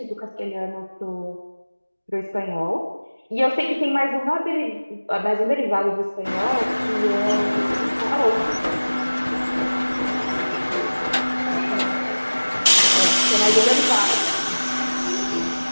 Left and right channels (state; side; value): inverted; both; correlation -1.00